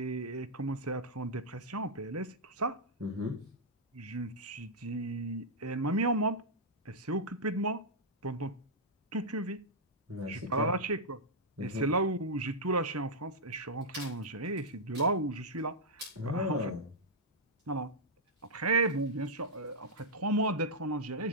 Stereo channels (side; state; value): both; normal; correlation -0.07